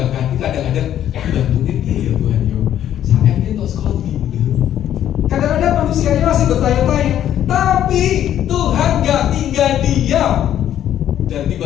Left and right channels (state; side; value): quieter; right; 11.0 dB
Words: hati kadang-kadang bantuin dia ya Tuhan yo. Saya itu sekolah gitu. Kadang-kadang manusianya masih bertanya-tanya, tapi Tuhan gak tinggal diam. Dan